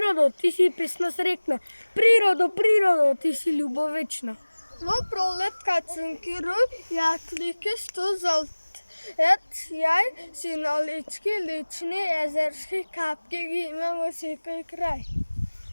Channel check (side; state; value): both; inverted; correlation -1.00